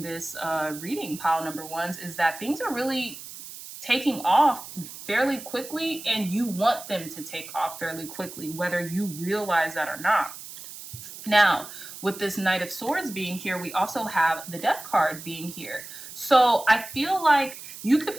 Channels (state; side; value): noise; right; hiss, 13 dB below the sound